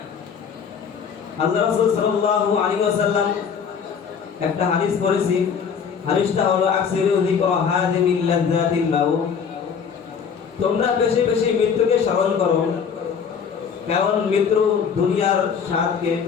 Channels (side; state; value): right; quieter; 6.7 dB